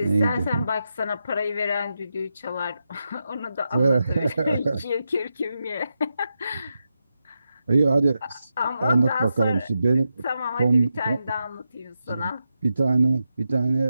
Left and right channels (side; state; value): both; inverted; correlation -0.87